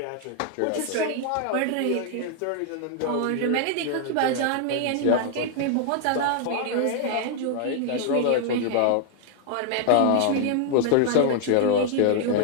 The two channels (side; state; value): both; different; correlation 0.00